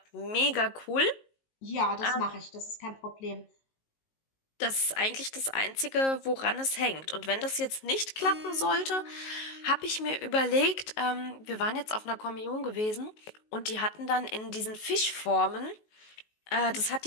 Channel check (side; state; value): right; late; 19 ms